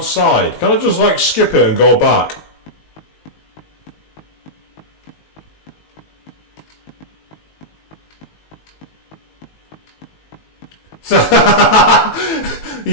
Can I just like skip it and go back?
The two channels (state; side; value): late; right; 19 ms